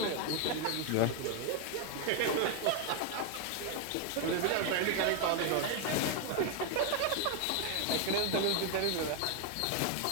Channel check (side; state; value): both; different; correlation 0.01